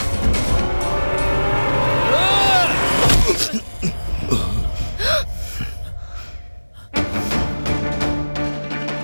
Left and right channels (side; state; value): both; inverted; correlation -1.00